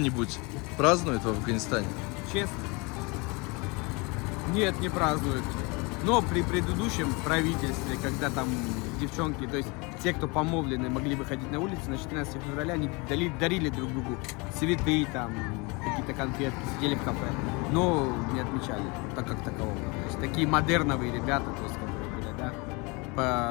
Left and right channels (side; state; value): right; quieter; 28.0 dB